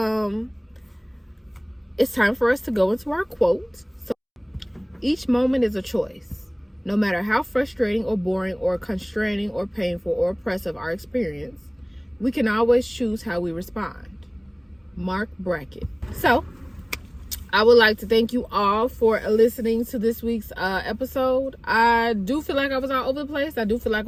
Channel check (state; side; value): identical; both; correlation 1.00